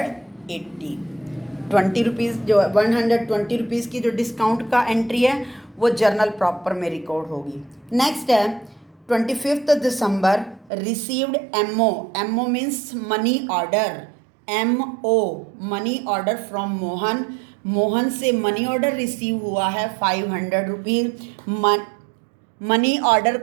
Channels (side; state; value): left; drops out; at 10.7 s